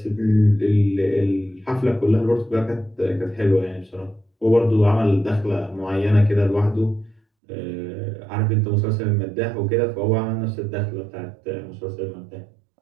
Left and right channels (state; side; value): drops out; left; at 7.2 s